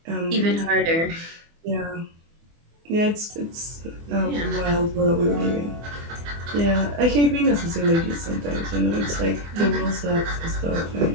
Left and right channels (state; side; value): late; left; 24 ms